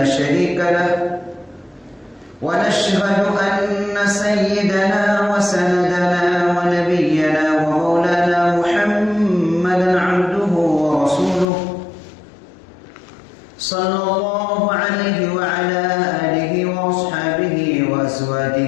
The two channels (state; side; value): drops out; right; at 11.5 s